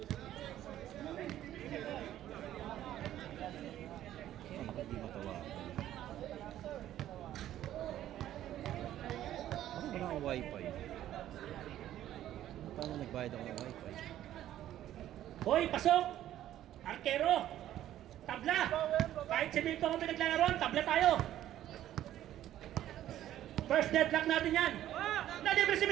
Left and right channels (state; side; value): quieter; left; 12.5 dB